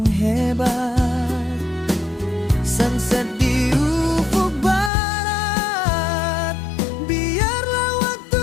hebat. Sunset di ufuk barat, biarlah waktu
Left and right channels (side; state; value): right; drops out; at 4.9 s